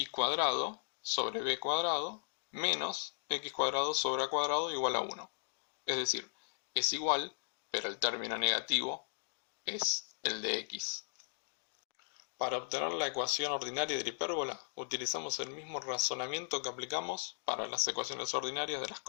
cuadrado sobre b cuadrado menos x cuadrado sobre a cuadrado igual a 1. Es decir, es igual, pero el término negativo es el de x. Para obtener la ecuación ordinaria de la hipérbola, utilizamos el mismo razonamiento que aplicamos para las ecuaciones ordinarias de las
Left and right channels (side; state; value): right; silent; digital silence